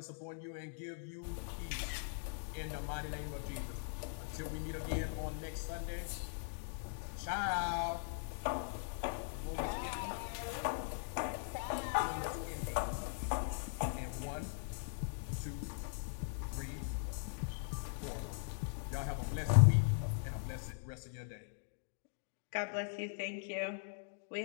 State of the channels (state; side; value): silent; right; digital silence